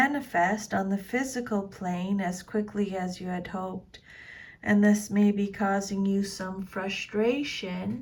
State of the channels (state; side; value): identical; both; correlation 1.00